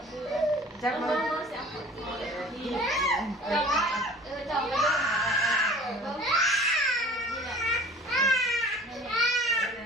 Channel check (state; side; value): normal; both; correlation 0.46